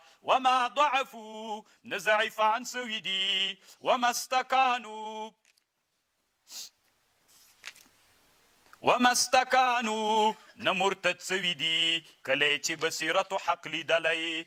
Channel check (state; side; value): identical; both; correlation 1.00